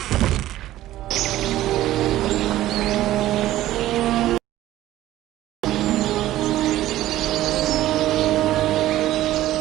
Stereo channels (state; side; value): quieter; left; 14.6 dB